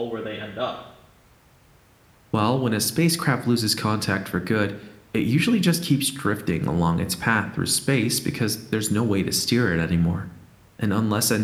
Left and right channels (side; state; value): both; identical; correlation 1.00